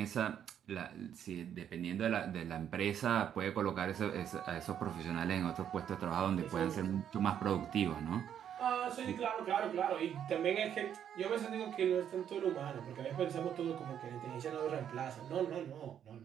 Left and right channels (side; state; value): left; quieter; 9.3 dB